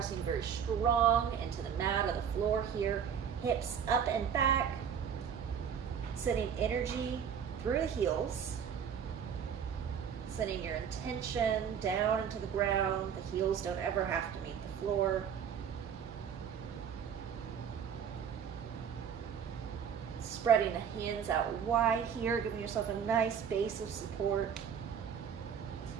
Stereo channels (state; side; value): quieter; left; 7.9 dB